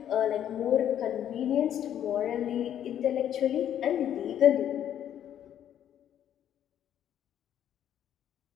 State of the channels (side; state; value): right; quieter; 10.3 dB